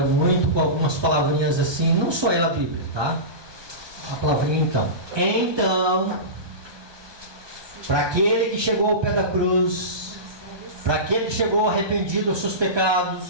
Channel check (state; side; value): late; left; 1.2 ms